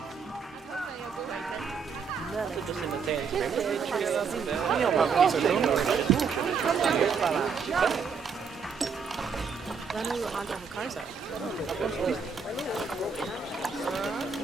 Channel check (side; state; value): left; quieter; 5.8 dB